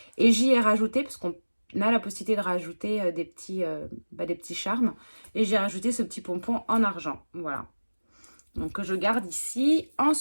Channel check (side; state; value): both; inverted; correlation -1.00